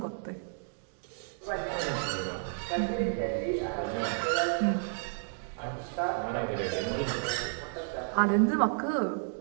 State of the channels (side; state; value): left; silent; digital silence